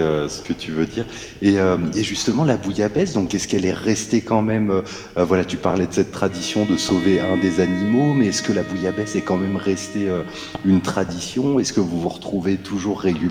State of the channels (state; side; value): identical; both; correlation 1.00